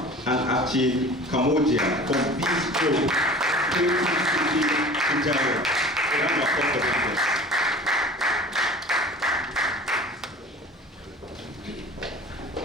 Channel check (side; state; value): both; normal; correlation 0.41